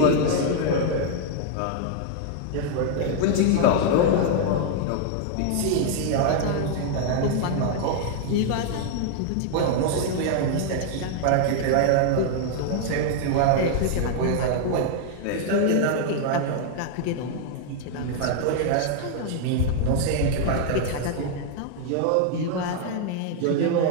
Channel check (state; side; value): different; both; correlation 0.00